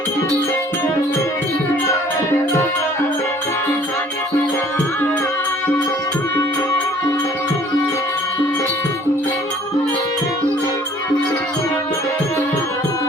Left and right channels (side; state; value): both; normal; correlation 0.55